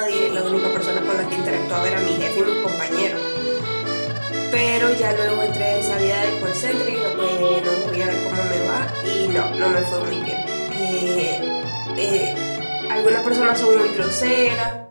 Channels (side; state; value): both; inverted; correlation -1.00